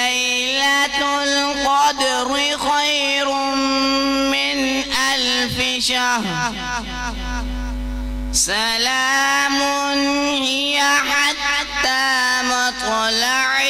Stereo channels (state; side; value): identical; both; correlation 1.00